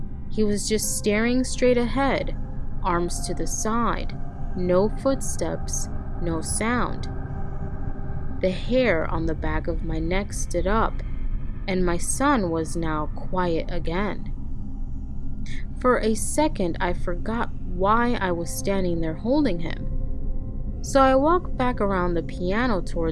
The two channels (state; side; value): identical; both; correlation 1.00